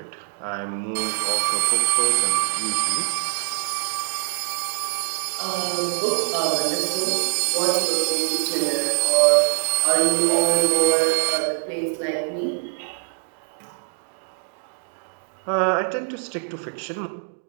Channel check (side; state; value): left; silent; digital silence